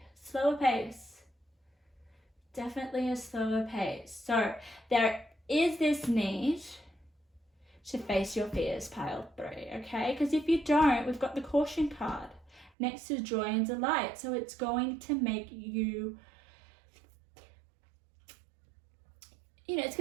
Slower pace. Definitely a slower pace. So there is this need to face your fears, pile 3, okay? Because if you don't, we've got the caution card next to joy and delight. So it's going to make you, it's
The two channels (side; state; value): left; drops out; at 12.7 s